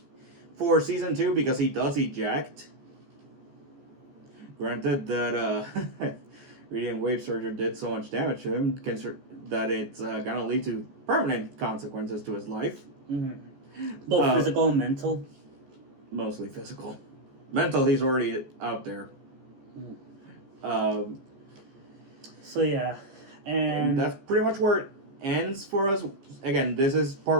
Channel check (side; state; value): left; late; 15 ms